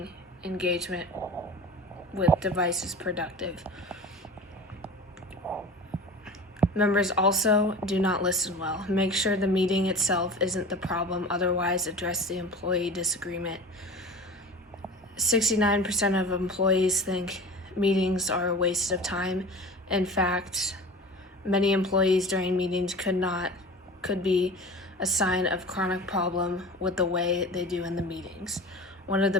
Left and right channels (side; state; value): both; normal; correlation 0.36